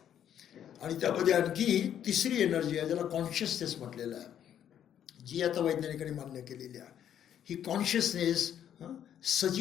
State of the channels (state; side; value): quieter; right; 9.9 dB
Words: आणि त्यामध्ये आणखी तिसरी एनर्जी आहे ज्याला कॉन्शियसनेस म्हटलेलं आहे, जी आता वैज्ञानिकांनी मान्य केलेली आहे. ही कॉन्शियसनेस